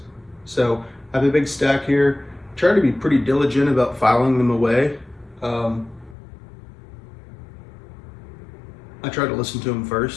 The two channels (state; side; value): drops out; right; at 6.2 s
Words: So I have a big stack here. Try to be pretty diligent about filing them away. I try to listen to them